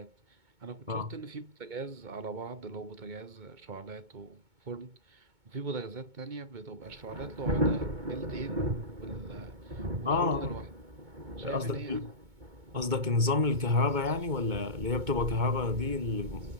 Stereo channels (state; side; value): late; left; 2.2 ms